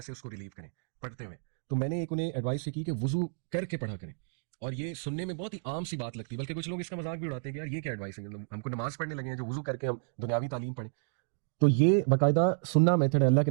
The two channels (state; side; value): silent; left; digital silence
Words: उसको रिलीव करें पढ़ते हुए। तो मैंने एक उन्हें एडवाइस की कि वज़ू करके पढ़ा करें। और ये सुनने में बहुत ही आम सी बात लगती है, बल्कि कुछ लोग इसका मजाक भी उड़ाते हैं कि यार ये क्या एडवाइस है, हमको नमाज पढ़ने लगे हैं जो वज़ू करके हम दुनियावी तालीम पढ़ें। तो ये बाकायदा सुन्ना मेथड है। अल्लाह के